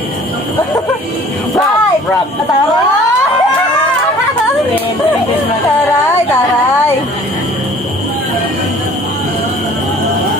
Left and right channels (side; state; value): both; normal; correlation 0.51